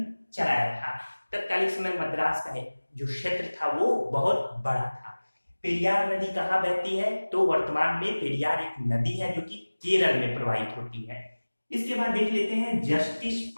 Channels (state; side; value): inverted; both; correlation -1.00